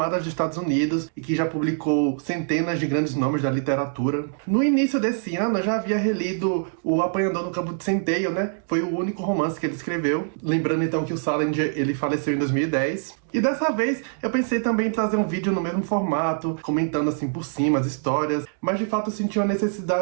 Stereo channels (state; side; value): silent; left; digital silence